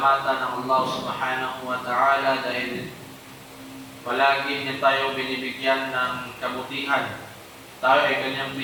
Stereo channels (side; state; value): both; identical; correlation 1.00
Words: ng Allah subhanahu wa ta'ala dahil palagi niya tayo binibigyan ng kabutihan. Tayo ay kanyang